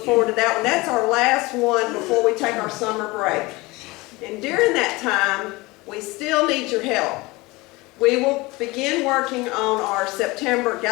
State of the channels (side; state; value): right; quieter; 22.6 dB